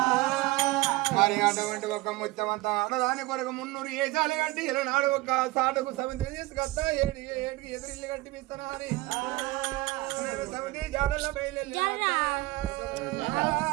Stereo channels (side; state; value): left; quieter; 20.2 dB